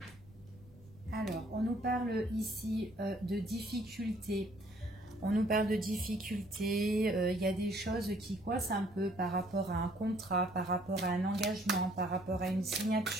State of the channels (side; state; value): right; noise; rumble, 24 dB below the sound